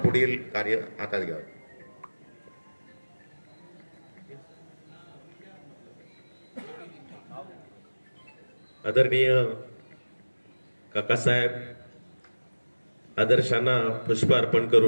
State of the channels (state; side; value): inverted; both; correlation -1.00